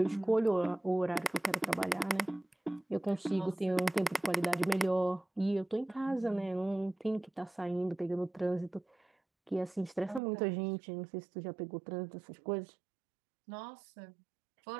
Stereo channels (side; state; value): left; drops out; at 10.2 s